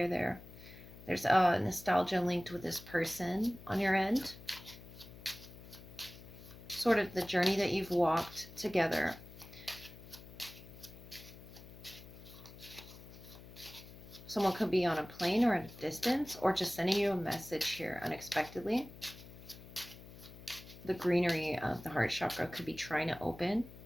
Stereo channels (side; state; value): left; noise; hum, 17 dB below the sound